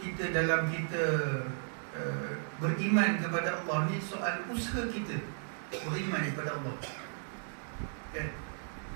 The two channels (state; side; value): silent; left; digital silence